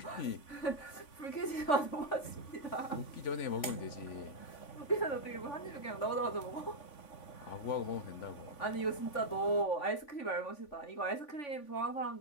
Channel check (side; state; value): right; late; 3.5 ms